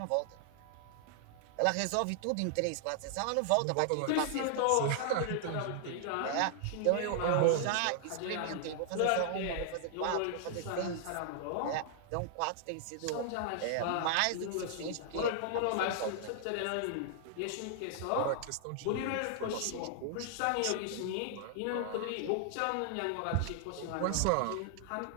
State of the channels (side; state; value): both; different; correlation -0.01